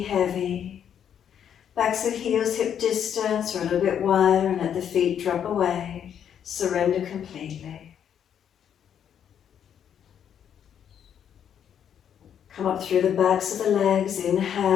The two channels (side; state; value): right; quieter; 8.9 dB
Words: heavy. Backs of heels hip distance or a little bit wider and let the feet drop away. Surrender completely. Come up through the backs of the legs,